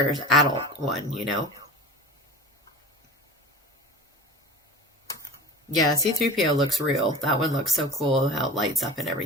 adult one, you know? Yeah, C3PO looks real. That one looks so cool, how it lights up and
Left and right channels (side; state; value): both; normal; correlation 0.35